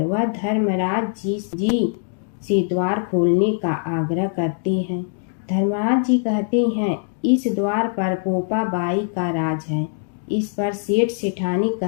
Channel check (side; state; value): right; silent; 64 dB below the other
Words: वह धर्मराज जी से द्वार खोलने का आग्रह करते हैं। धर्मराज जी कहते हैं, इस द्वार पर पोपा बाई का राज है। इस पर सेठ सेठानी